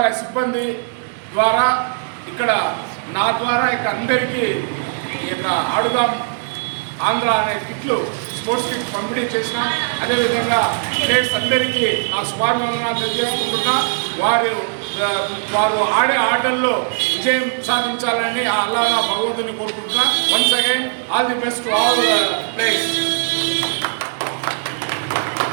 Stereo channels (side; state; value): left; silent; digital silence